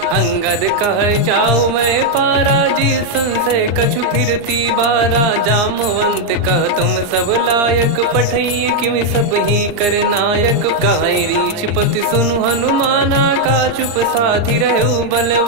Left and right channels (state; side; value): late; left; 39 ms